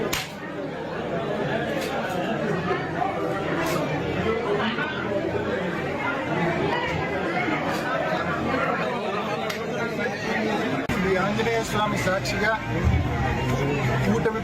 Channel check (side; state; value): both; identical; correlation 1.00